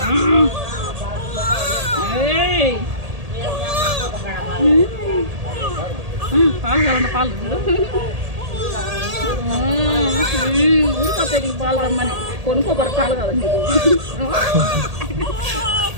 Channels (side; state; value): left; late; 1.8 ms